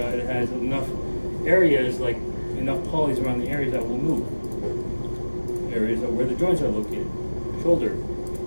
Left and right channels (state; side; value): inverted; both; correlation -1.00